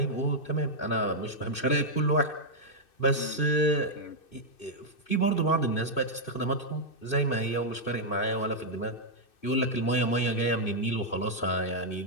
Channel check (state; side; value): late; right; 2.6 ms